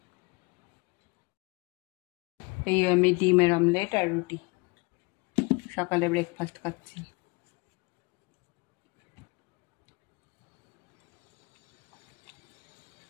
এই আমি ডিমের অমলেট আর রুটি সকালে ব্রেকফাস্ট খাচ্ছি।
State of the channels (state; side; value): quieter; right; 28.1 dB